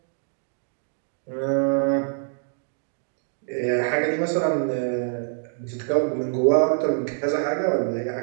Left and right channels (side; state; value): left; silent; digital silence